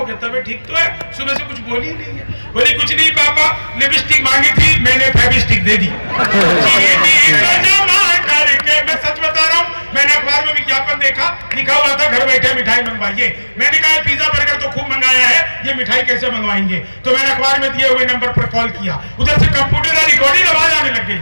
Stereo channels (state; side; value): inverted; both; correlation -1.00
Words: गया, तबीयत ठीक तो है? सुबह से कुछ बोली नहीं है। बोली कुछ नहीं पापा, लिपस्टिक मांगी थी, मैंने फेविस्टिक दे दी। चीनी को जमा करके, मैं सच बता रहा हूँ, मैंने अखबार में विज्ञापन देखा, लिखा हुआ था घर बैठे मिठाई मंगवाइए। मैंने कहा पिज्जा बर्गर तो खूब मंगाया है, ये मिठाई कैसे मंगवाएंगे? तो मैंने अखबार में दिए हुए नंबर पर कॉल किया, उधर से कंप्यूटर रिकॉर्डिंग आवाज आने लग गई।